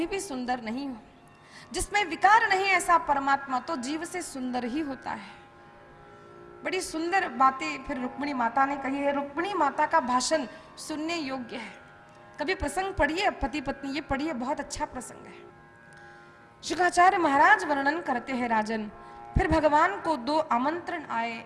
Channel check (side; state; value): both; identical; correlation 1.00